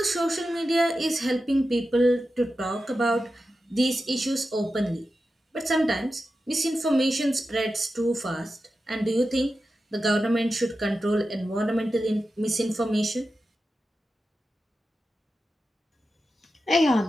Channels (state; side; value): normal; both; correlation 0.92